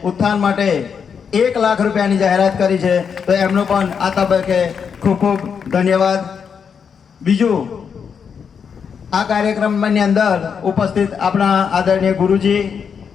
ઉત્થાન માટે 1 લાખ રૂપિયાની જાહેરાત કરી છે. તો એમનો પણ આ તબક્કે ખૂબ ખૂબ ધન્યવાદ. બીજું આ કાર્યક્રમની અંદર ઉપસ્થિત આપણા આદરણીય ગુરુજી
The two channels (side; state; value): right; quieter; 6.7 dB